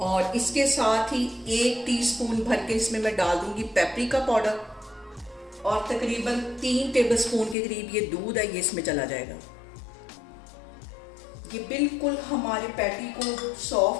और इसके साथ ही 1 टीस्पून भर के इसमें मैं डाल दूंगी पेपरिका पाउडर, और तकरीबन 3 टेबलस्पून के करीब ये दूध है, ये इसमें चला जाएगा। ये बिल्कुल हमारे पैटी को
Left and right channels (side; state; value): right; drops out; at 7.6 s